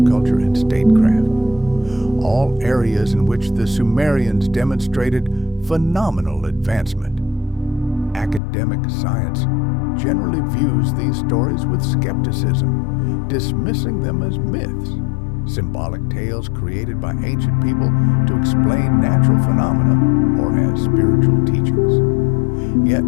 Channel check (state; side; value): drops out; right; at 8.4 s